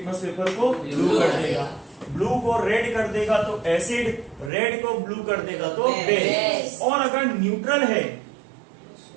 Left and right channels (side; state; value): left; drops out; at 4.5 s